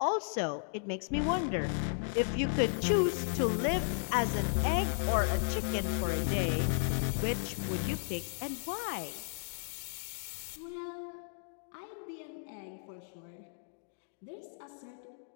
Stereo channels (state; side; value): silent; right; digital silence